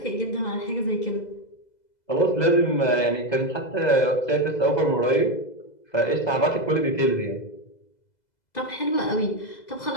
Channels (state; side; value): late; right; 2.0 ms